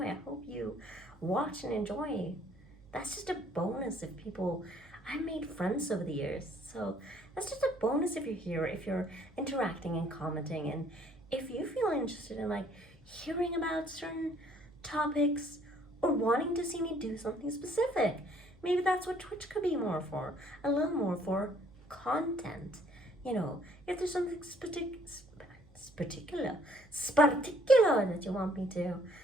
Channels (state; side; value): noise; right; hum, 25 dB below the sound